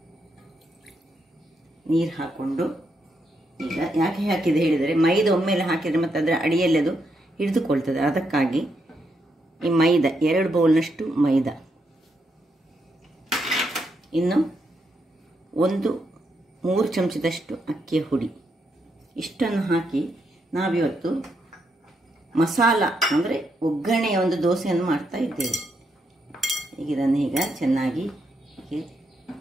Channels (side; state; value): both; normal; correlation 0.80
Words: ನೀರು ಹಾಕೊಂಡು, ಈಗ ಯಾಕೆ ಹಾಕಿದೆ ಹೇಳಿದರೆ ಮೈದಾ ಒಮ್ಮೆಲೆ ಹಾಕಿದರೆ ಮತ್ತು ಅದರ ಅಡಿಯಲ್ಲಿ ಅದು ಹಿಡಿದುಕೊಳ್ತದೆ. ಅದಕ್ಕಾಗಿ ಈ ಮೈದಾ 2 ಬೌಲ್ನಷ್ಟು ಮೈದಾ, ಇನ್ನು 3 ಚಮಚದಷ್ಟು ಅಕ್ಕಿಯ ಹುಡಿ, ಇಷ್ಟನ್ನು ಹಾಕಿ ನಾವಿವತ್ತು ಮಸಾಲ ಅಂದರೆ ಒಗ್ಗರಣೆಯ ಒಂದು ದೋಸೆಯನ್ನು ಮಾಡ್ತಾ ಇದ್ದೇವೆ. ಈಗ ಇದನ್ನು ಈಗ ಚೆನ್ನಾಗಿ